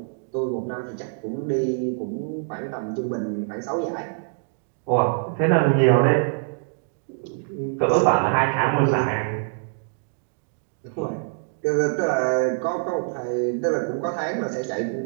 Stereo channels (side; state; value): left; silent; digital silence